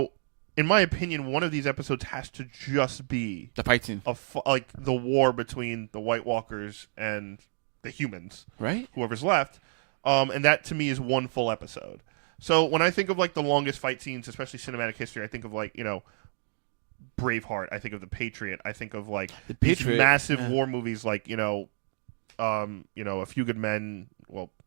in my opinion, one of these episodes has to just be The fight scene. like the war between the White Walkers and the humans, Right? whoever's left. And that to me is one full episode. So when I think of like the longest fight scenes, especially cinematic history, I think of like, Braveheart. I think of The Patriot. I think of like these Patriot, massive yeah. war movies like, A Few Good Men, well,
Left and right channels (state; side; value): silent; left; digital silence